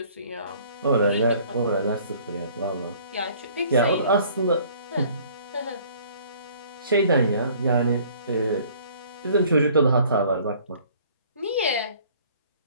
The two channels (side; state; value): both; inverted; correlation -0.55